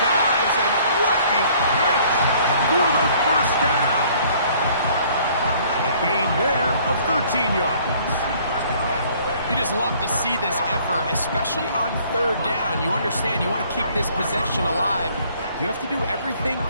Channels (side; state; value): both; inverted; correlation -0.58